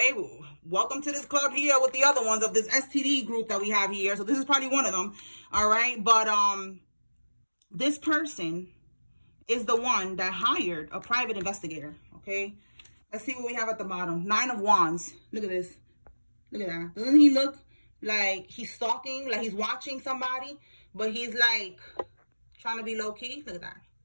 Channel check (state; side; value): inverted; both; correlation -1.00